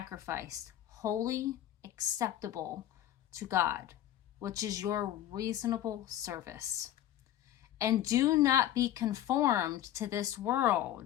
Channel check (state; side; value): quieter; right; 12.3 dB